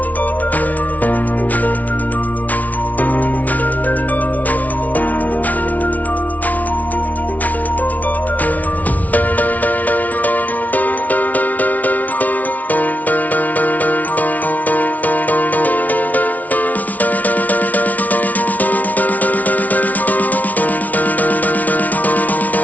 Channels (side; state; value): right; late; 0.073 ms